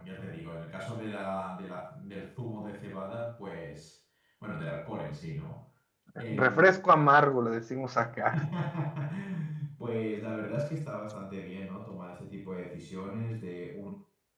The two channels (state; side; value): identical; both; correlation 1.00